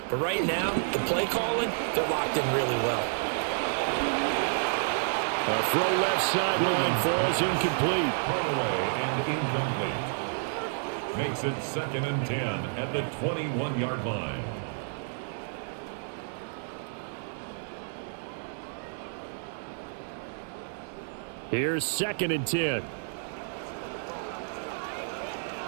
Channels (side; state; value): left; silent; 58 dB below the other